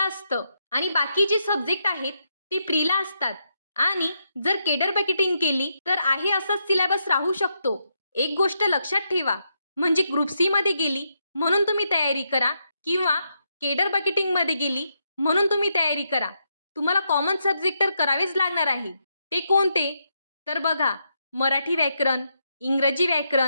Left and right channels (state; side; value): inverted; both; correlation -0.80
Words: असतं आणि बाकी जे सब्जेक्ट आहेत ते प्रीला असतात. आणि जर केडर बकेटिंग केली तर आहे असाच सिलेबस राहू शकतो. एक गोष्ट लक्षात ठेवा, म्हणजे ग्रुप सी मध्ये गेली म्हणून तुम्ही तयारी करा किंवा केडर बकेटिंग मध्ये गेली म्हणून तुम्ही तयारी करा. तुम्हाला कॉमन सब्जेक्ट तर करावेच लागणार आहे. ते कोणते? तर बघा, मराठी व्याकरण, इंग्रजी